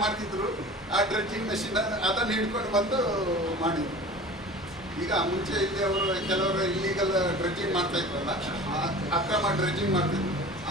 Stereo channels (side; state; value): both; normal; correlation 0.39